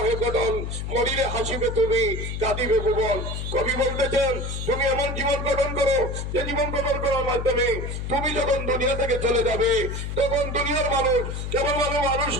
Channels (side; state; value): left; noise; hum, 4 dB below the sound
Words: হে গঠন, মরিলে হাসিবে তুমি কাঁদিবে ভুবন। কবি বলতেছেন, তুমি এমন জীবন গঠন করো যে জীবন গঠন করার মাধ্যমে তুমি যখন দুনিয়া থেকে চলে যাবে তখন দুনিয়ার মানুষ কেবল মানুষ